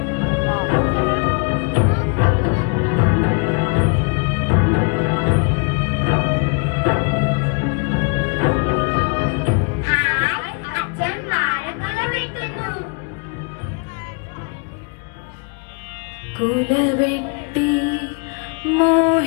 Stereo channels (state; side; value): quieter; right; 36.1 dB